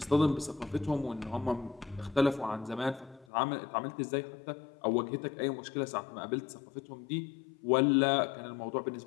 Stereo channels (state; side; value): drops out; right; at 3.2 s